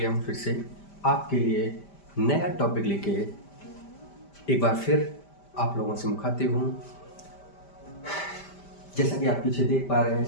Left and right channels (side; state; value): right; late; 5.1 ms